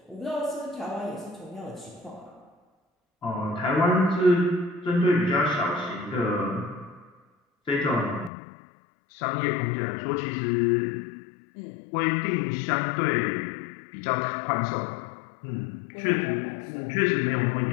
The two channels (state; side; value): drops out; right; at 8.3 s